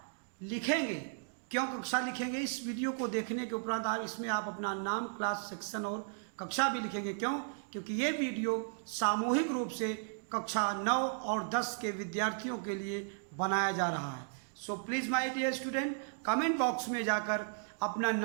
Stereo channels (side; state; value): left; silent; digital silence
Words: लिखेंगे। क्यों कक्षा लिखेंगे? इस वीडियो को देखने के उपरांत इसमें आप अपना नाम, क्लास, सेक्शन और कक्षा भी लिखेंगे। क्यों? क्योंकि ये वीडियो सामूहिक रूप से कक्षा 9 और 10 के विद्यार्थियों के लिए बनाया जा रहा है। So please my dear student, comment box में जाकर अपना